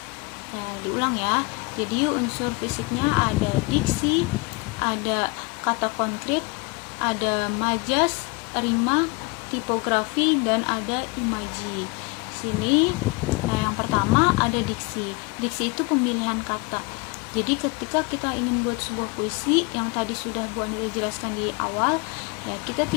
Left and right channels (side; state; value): right; quieter; 27.4 dB